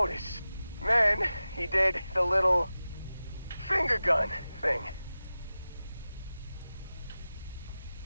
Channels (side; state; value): both; inverted; correlation -0.94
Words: Then he did the little finger gun thing.